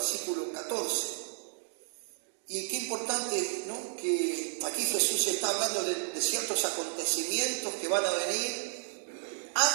14. Y qué importante, ¿no?, que aquí Jesús está hablando de ciertos acontecimientos que van a venir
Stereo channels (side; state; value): left; silent; digital silence